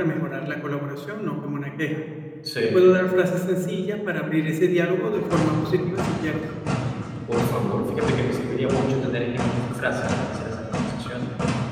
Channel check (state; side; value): identical; both; correlation 1.00